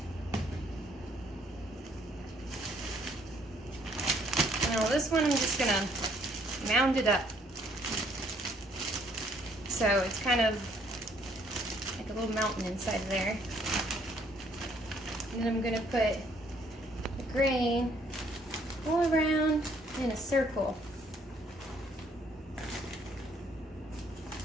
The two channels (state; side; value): normal; both; correlation 0.65